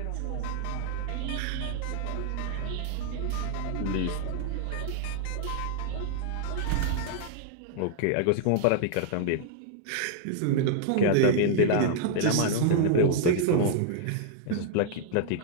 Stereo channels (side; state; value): both; different; correlation -0.01